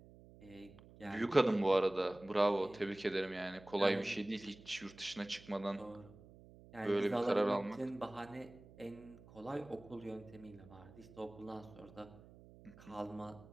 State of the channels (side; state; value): right; noise; hum, 21 dB below the sound